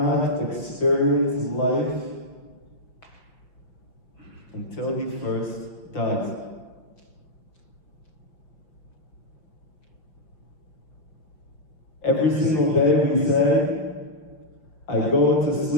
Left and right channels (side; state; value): right; late; 5.7 ms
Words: experience life until he first dies. Every single day we say, I go to